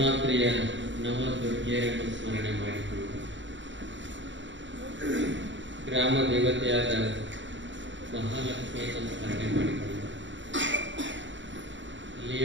ನವದುರ್ಗೆಯರನ್ನು ಸ್ಮರಣೆ ಮಾಡಿಕೊಂಡು ಗ್ರಾಮ ದೇವತೆಯಾದ ಮಹಾಲಕ್ಷ್ಮಿಯನ್ನು ಸ್ಮರಣೆ ಮಾಡಿಕೊಂಡು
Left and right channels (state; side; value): late; left; 0.54 ms